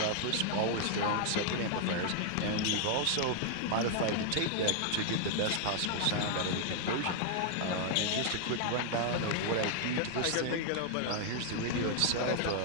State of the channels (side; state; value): both; different; correlation 0.00